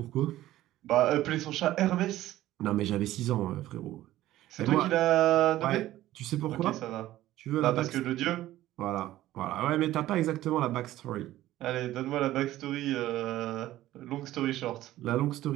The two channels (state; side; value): quieter; left; 14.8 dB